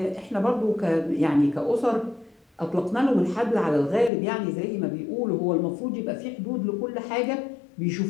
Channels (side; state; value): right; drops out; at 4.1 s